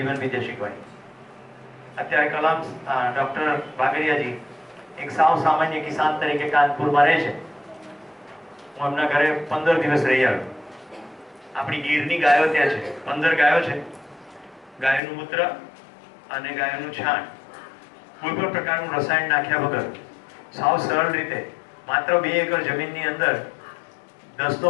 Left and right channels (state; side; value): drops out; right; at 15.0 s